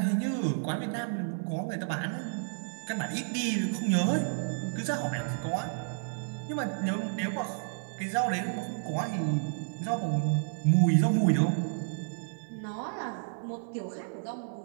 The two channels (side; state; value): left; silent; 57 dB below the other